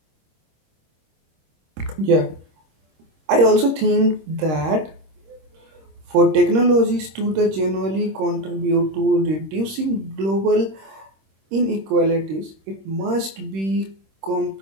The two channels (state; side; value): late; left; 26 ms